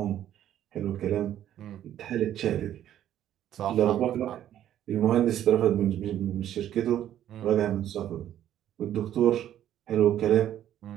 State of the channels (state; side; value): quieter; left; 11.4 dB